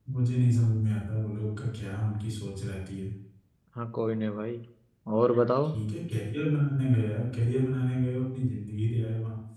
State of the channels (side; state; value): both; identical; correlation 1.00